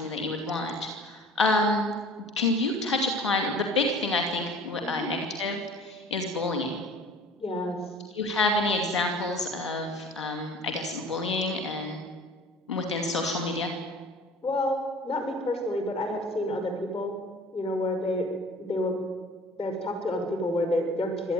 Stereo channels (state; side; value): normal; both; correlation 0.46